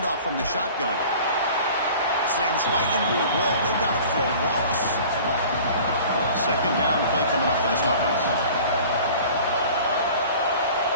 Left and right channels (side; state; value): both; inverted; correlation -0.44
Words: from the shotgun. Slams right into a wall. They've got it for a loss. Second down play coming up for this offense.